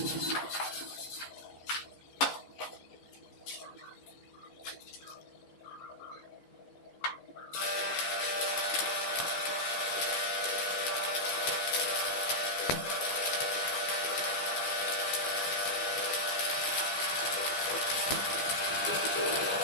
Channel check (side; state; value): right; late; 15 ms